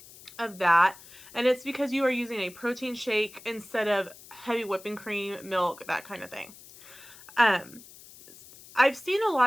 of that. And it's because you are using a protein shake instead of heavy whipping cream, milk, that kind of thing. I've seen a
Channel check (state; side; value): noise; left; hiss, 20 dB below the sound